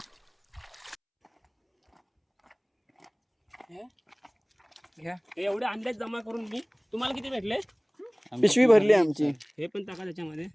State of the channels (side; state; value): both; identical; correlation 1.00